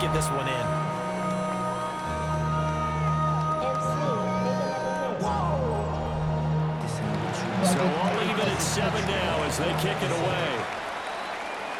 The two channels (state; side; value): identical; both; correlation 1.00